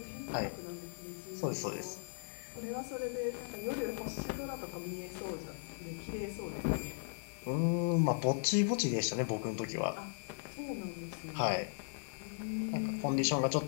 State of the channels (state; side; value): silent; right; digital silence